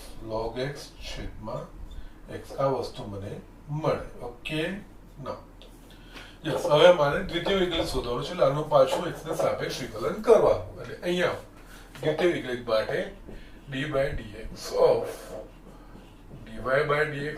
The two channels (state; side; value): identical; both; correlation 1.00